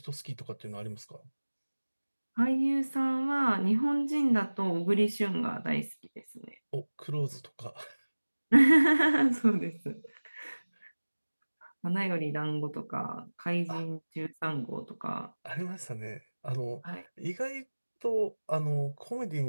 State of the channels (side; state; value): both; inverted; correlation -1.00